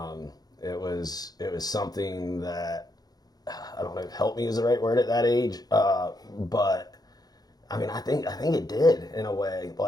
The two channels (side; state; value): right; late; 0.19 ms